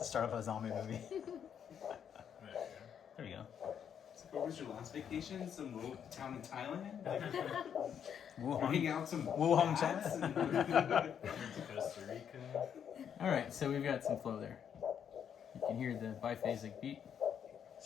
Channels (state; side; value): quieter; right; 8.3 dB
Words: start of a zombie movie. There you go. So what was your last vacation? Some little town in Thailand? Like, Wuhan. hang out some Wuhan, bats China. To Costa Rica. All right, so we've got some flow there. You can hear the biphasic beat.